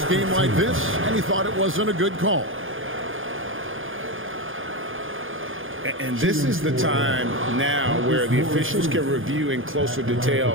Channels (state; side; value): late; left; 0.58 ms